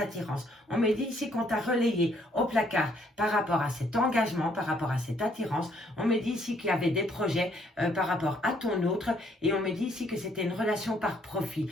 On me dit ici qu'on t'a relayé au placard par rapport à cet engagement, par rapport à cette attirance. On me dit ici qu'il y avait des projets par rapport à ton autre. Et on me dit ici que c'était une relation par profit.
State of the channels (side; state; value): both; normal; correlation 0.67